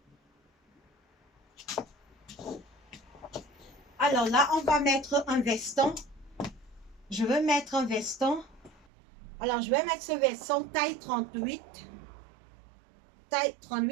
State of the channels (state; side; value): drops out; left; at 8.8 s